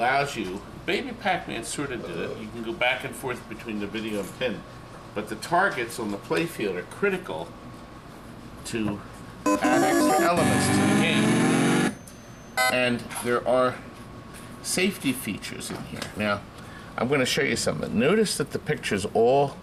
you, Baby Pac-Man sort of did it, you can go back and forth between the video and pin, but the targets on the playfield are critical to add extra elements to the game. And there are safety features in here. Now, I'm going to show you something. Notice that the picture's all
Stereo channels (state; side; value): identical; both; correlation 1.00